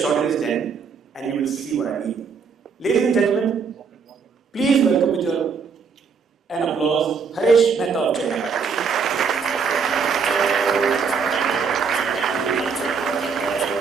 in his den, and you will see what I mean. Ladies and gentlemen, please welcome with an applause, Haresh Mehta of China.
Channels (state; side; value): quieter; left; 5.7 dB